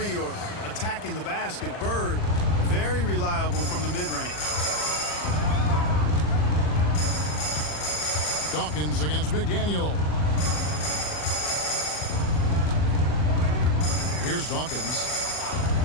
or attacking the basket, Bird, very reliable from the mid-range. Dawkins against McDaniel. Here's Dawkins.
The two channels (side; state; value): right; late; 40 ms